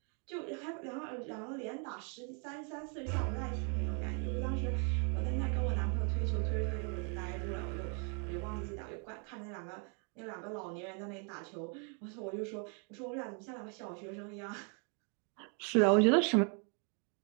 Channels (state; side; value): quieter; left; 39.0 dB